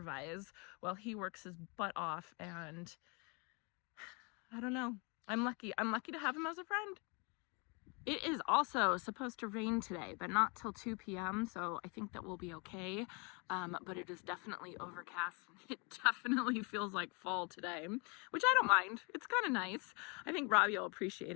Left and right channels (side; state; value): right; quieter; 32.0 dB